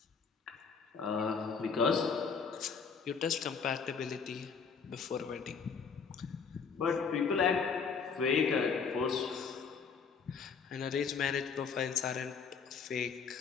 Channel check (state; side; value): quieter; right; 5.8 dB